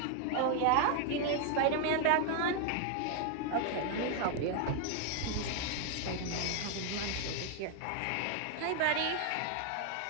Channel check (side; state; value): both; different; correlation 0.00